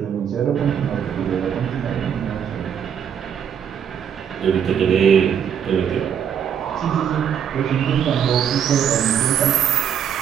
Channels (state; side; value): quieter; left; 8.4 dB